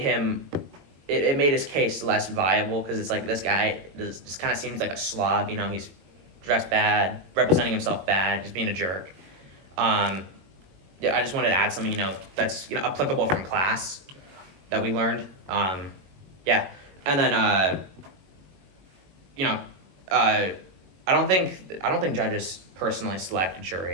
his case less viable because it's like this guy just kind of seems like a slob. You know, he's dressed bad, representing himself bad, just being a jerk. Yeah, I just wanted to add something, you know, that's, you know, applicable from class that we learned. Yeah, and then you know, I don't think judges personally select a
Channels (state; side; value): late; left; 22 ms